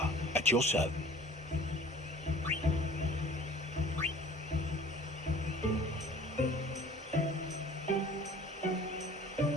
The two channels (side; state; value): both; normal; correlation 0.48